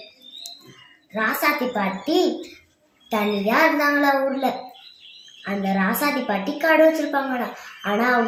ராசாதி பாட்டி தனியா இருந்தாங்களா ஊர்ல. அந்த ராசாதி பாட்டி கடை வச்சிருப்பாங்களா. ஆனா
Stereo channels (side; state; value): both; identical; correlation 1.00